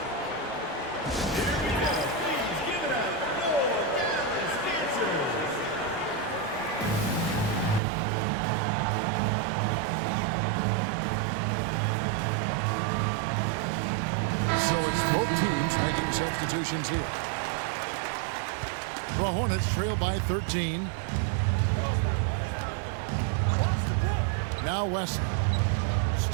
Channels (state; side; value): drops out; left; at 7.8 s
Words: Both teams making substitutions here. The Hornets trail by 13. Now Wesley.